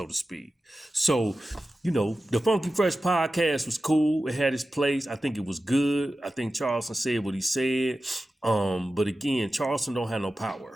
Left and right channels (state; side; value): normal; both; correlation 0.94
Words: to speak. So, the Funky Fresh podcast was cool. It had its place. I think it was good. I think Charleston said what he said. But again, Charleston don't have no